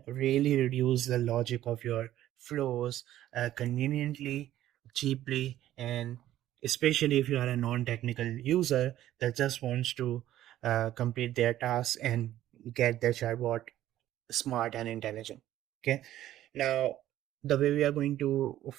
really reduce the logic of your flows conveniently, cheaply, and especially if you are a non-technical user that just wants to complete their tasks and get their chatbot smart and intelligent. Okay. Now, the way we are going to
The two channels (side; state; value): left; quieter; 13.2 dB